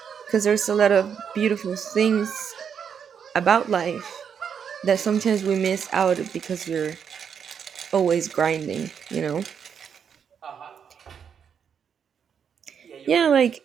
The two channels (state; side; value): quieter; left; 7.4 dB